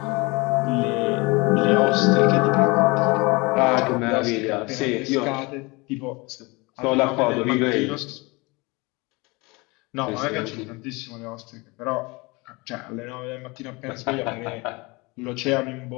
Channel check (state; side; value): quieter; right; 25.7 dB